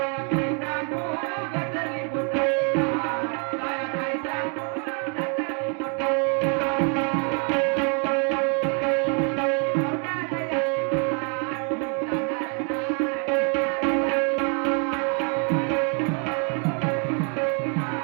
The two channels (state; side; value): quieter; left; 38.3 dB